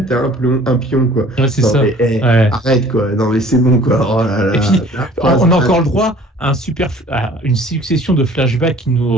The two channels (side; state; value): both; normal; correlation 0.51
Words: t'as un pion, quoi. Ouais, c'est non, ça. Mais, arrête, quoi. Non, mais c'est bon, quoi. Oh là là. Et puis, on a encore le droit à une succession de flashbacks qui